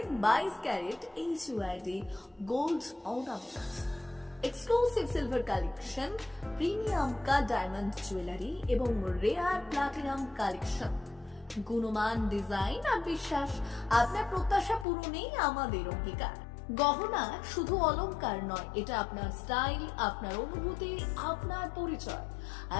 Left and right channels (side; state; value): right; drops out; at 14.9 s